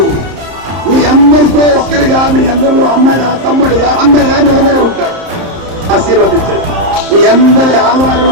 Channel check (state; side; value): late; left; 30 ms